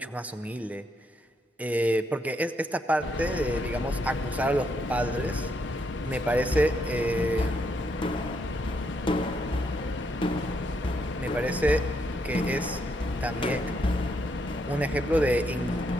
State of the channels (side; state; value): both; normal; correlation 0.76